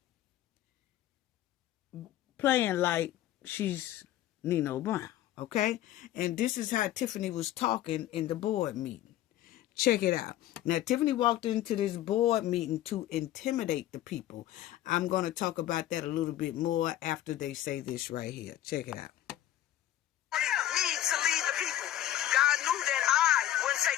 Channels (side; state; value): right; quieter; 13.0 dB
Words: playing like she's Nino Brown, okay? And this is how Tiffany was talking in the board meeting. Check it out. Now, Tiffany walked into this board meeting to intimidate the people. I'm going to talk about that a little bit more after they say this right here. Check it out. Me to lead the people. God knew that I wouldn't